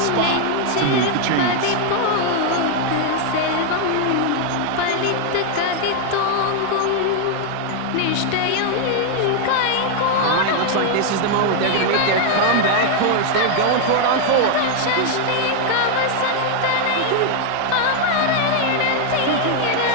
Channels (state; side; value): different; both; correlation 0.00